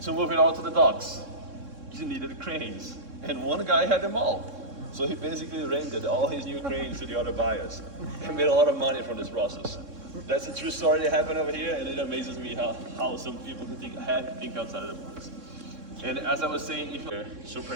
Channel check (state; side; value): late; left; 3.6 ms